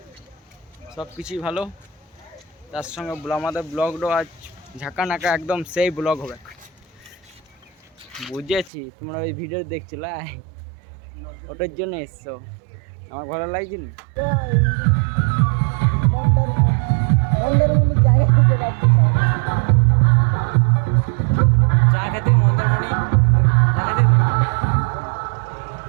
সব কিছুই ভালো। তার সঙ্গে আমাদের ব্লগটাও আজ ঝাঁকা নাকা একদম সেই ব্লগ হবে। বুঝেছি তোমরা ওই ভিডিও দেখছিলে, ওটার জন্য এসছো। আমার ভালো লাগছে নি। চা খেতে মন্দারমণি, চা খেতে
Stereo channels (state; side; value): drops out; left; at 8.7 s